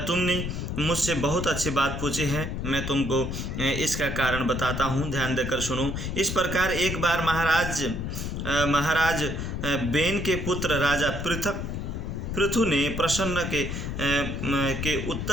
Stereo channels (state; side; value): noise; left; rumble, 4 dB below the sound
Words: तुमने मुझसे बहुत अच्छी बात पूछी है, मैं तुमको इसका कारण बताता हूँ, ध्यान देकर सुनो। इस प्रकार एक बार महाराज बेन के पुत्र राजा पृथु ने प्रसन्न के